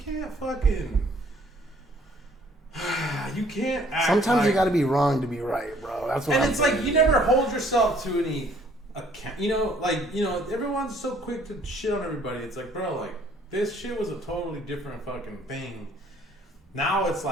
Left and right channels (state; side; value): normal; both; correlation 0.60